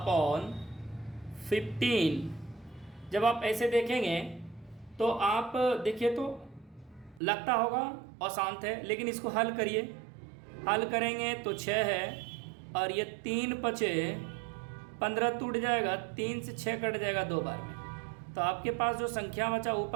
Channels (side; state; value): left; drops out; at 7.2 s